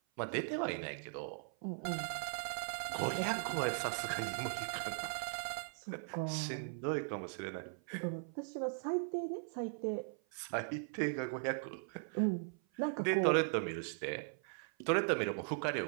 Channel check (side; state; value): left; silent; 52 dB below the other